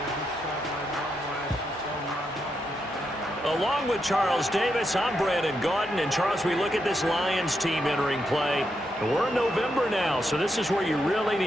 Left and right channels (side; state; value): both; normal; correlation 0.82